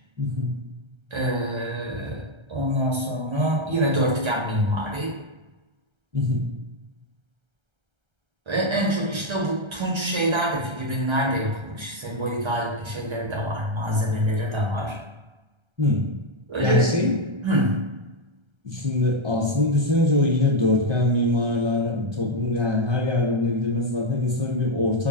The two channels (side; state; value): left; late; 1.3 ms